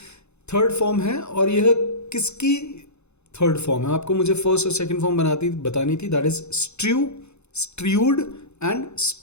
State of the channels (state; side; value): late; right; 0.81 ms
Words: थर्ड फॉर्म है और यह किसकी थर्ड फॉर्म है। आपको मुझे फर्स्ट और सेकंड फॉर्म बतानी थी। That is strew, strewed and